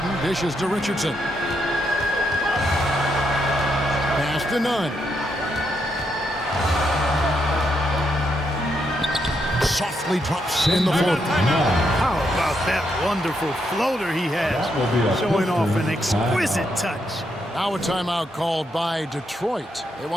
dishes to Richardson. Pass to Nunn. Softly drops in the floater. How about that wonderful floater he has, showing off an exquisite touch. Now a timeout called by Detroit. They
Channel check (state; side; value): normal; both; correlation 0.79